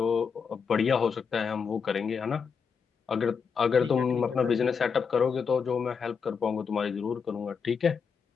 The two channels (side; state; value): right; quieter; 6.1 dB